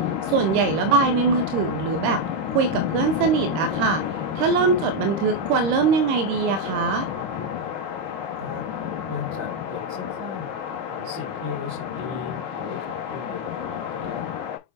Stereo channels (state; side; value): late; left; 26 ms